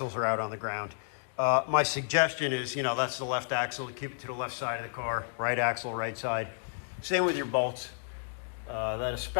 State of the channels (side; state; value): right; silent; digital silence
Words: are out on the ground. My suggestion is, that's the left axle, to keep it to the left side of the car. Right axle, right side. Same with your bolts. That